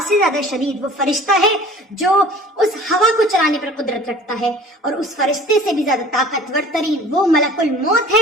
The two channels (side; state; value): both; normal; correlation 0.46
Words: سے زیادہ شدید وہ فرشتہ ہے جو اس ہوا کو چلانے پر قدرت رکھتا ہے، اور اس فرشتے سے بھی زیادہ طاقتور ترین وہ ملک الموت